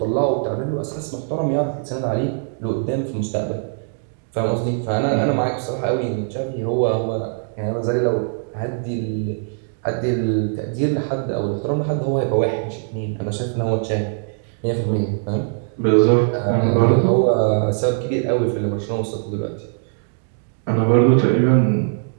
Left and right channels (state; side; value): silent; left; digital silence